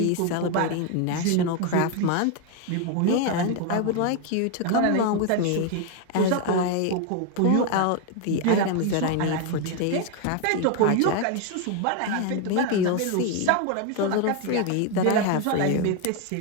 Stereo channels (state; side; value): different; both; correlation 0.01